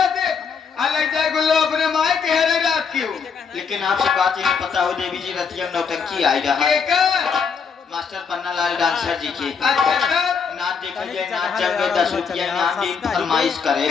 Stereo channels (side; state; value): right; quieter; 6.0 dB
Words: से अलग जाए गुल्लो अपने माई के हरे रात की हो लेकिन आपसे बात ये नहीं पता हो देवी जी रतिया नौटंकी आई रहा के कर मास्टर पन्नालाल डांसर जी के अच्छा कर नाच देखिए नाच जंगे 10 रुपया नाम दी फरमाइश करे